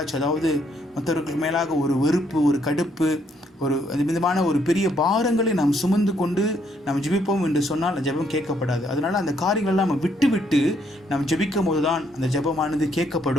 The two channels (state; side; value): normal; both; correlation 0.71